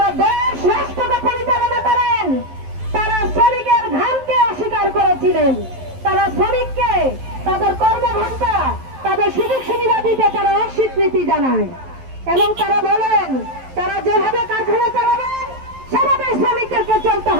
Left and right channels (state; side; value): late; left; 11 ms